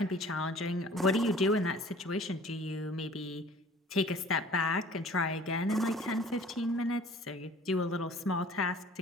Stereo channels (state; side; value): normal; both; correlation 0.49